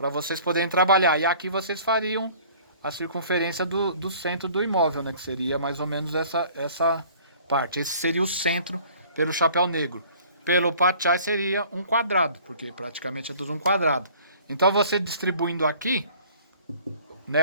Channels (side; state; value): both; inverted; correlation -0.52